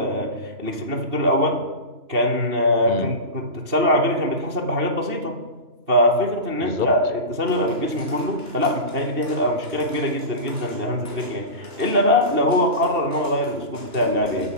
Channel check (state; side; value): late; left; 3.0 ms